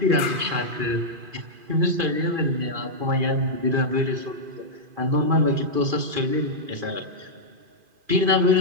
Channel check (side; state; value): left; late; 2.4 ms